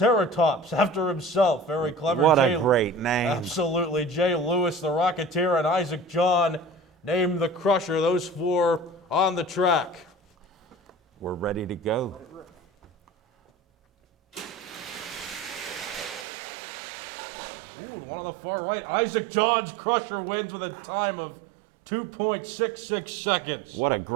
after himself. Very clever. What a great name. Absolutely. Jay Lewis, the Rocketeer, and Isaac John named the Crusher. Those 4 on the track. We're ready to go. Ooh, one on the far right. Isaac John's Crusher wins with a time of 2.66 seconds. What a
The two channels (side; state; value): left; drops out; at 16.2 s